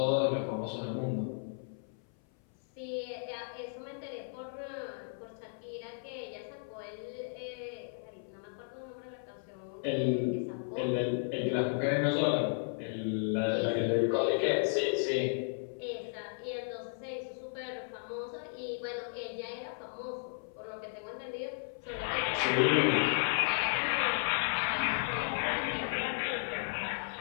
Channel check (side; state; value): right; silent; 55 dB below the other